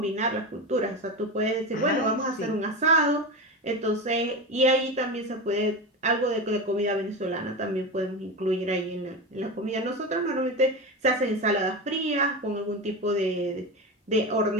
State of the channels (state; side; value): normal; both; correlation 0.22